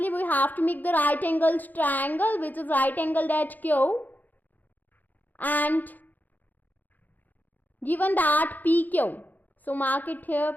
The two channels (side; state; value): right; late; 0.084 ms